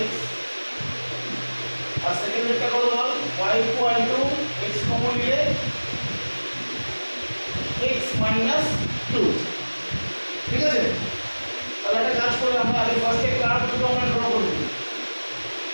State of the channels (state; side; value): inverted; both; correlation -1.00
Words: x, আর সেকেন্ডটা কত বল y equal to x common নিলে x minus 2। ঠিক আছে, তাহলে একটা কাজ করে আমরা আগে ফার্স্টে কার্ভ দুটো আমরা ড্র করব।